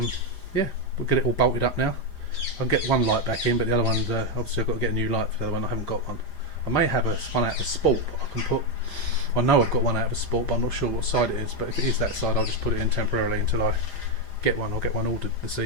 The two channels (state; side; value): late; right; 4.9 ms